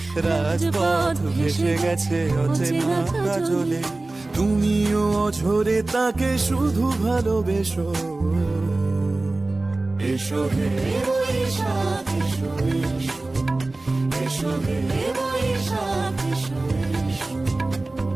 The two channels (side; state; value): left; quieter; 3.1 dB